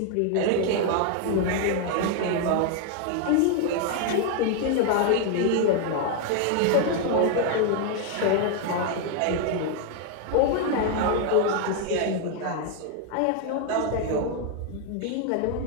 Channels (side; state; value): both; different; correlation 0.00